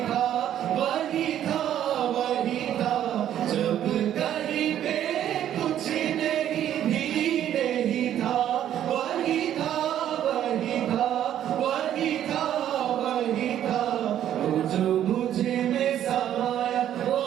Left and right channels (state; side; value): quieter; left; 11.0 dB